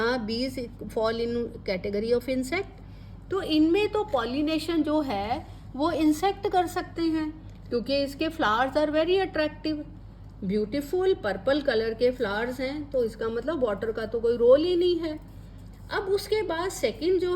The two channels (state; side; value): identical; both; correlation 1.00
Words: बीज fall in category of insect. तो इनमें तो पॉलिनेशन जो है वो इंसेक्ट कर सकते हैं, क्योंकि इसके flowers are very attractive, beautiful purple colour के फ्लावर्स हैं, तो इसका मतलब वाटर का तो कोई रोल ही नहीं है। अब उसके बाद सेकंड जो